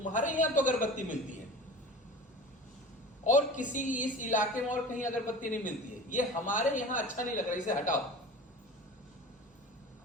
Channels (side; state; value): both; normal; correlation 0.37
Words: यहाँ तो अगरबत्ती मिलती है और किसी इस इलाके में और कहीं अगरबत्ती नहीं मिलती है, ये हमारे यहाँ अच्छा नहीं लग रहा, इसे हटाओ।